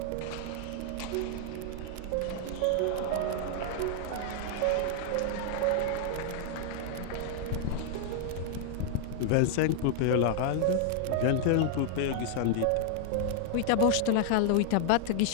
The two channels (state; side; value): different; both; correlation -0.01